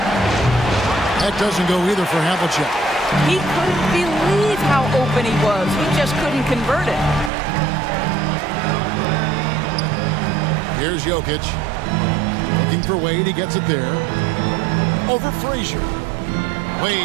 That doesn't go either for Havlicek. He couldn't believe how open he was. He just couldn't convert it. Here's Jokic. Looking for Wade. He gets it there. Over Frazier.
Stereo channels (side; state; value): left; drops out; at 7.3 s